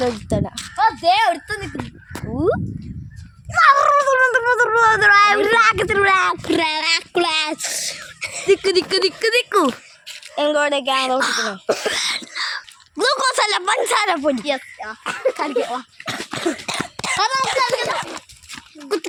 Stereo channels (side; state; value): both; identical; correlation 1.00